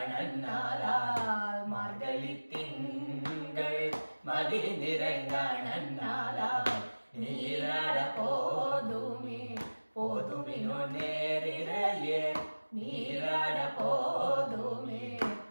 நன்னாளால் மார்கழி திங்கள் மதி நிறைந்த நன்னாளால் நீராட போதுமே போதுமினோ நேரிழையே நீராட போதுமே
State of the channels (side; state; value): both; inverted; correlation -1.00